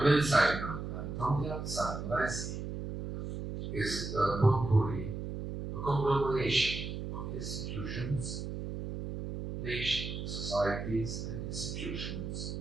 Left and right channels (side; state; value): right; noise; hum, 6 dB below the sound